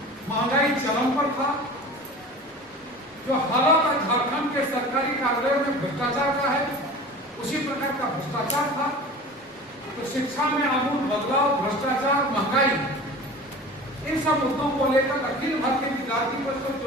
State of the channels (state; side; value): normal; both; correlation 0.38